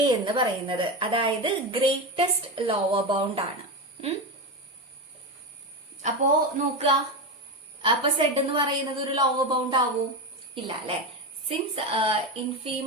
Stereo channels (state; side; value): normal; both; correlation 0.16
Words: എന്ന് പറയുന്നത്, അതായത് ഗ്രേറ്റസ്റ്റ് ലോവർ ബൗണ്ട് ആണ്. അപ്പോ നോക്കുക, അപ്പൊ സെഡ് എന്ന് പറയുന്നത് ഒരു ലോവർ ബൗണ്ട് ആവൂ? ഇല്ല അല്ലെ. Since